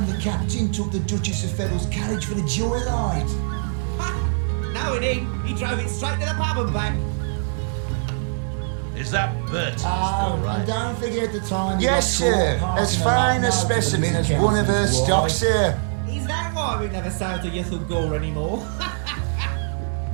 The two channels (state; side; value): silent; left; digital silence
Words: the captain took the Duchess of Federal's carriage for a joyride? No, he didn't. He drove it straight to the pub and back. Is that Bertie? Oh, and don't forget the time he Yes, got sir. caught As passing a fine a love note to the specimen Lizard as one of her Councillor's stock, wife. sir. Is that why we never sail to Yuthel Gore anymore?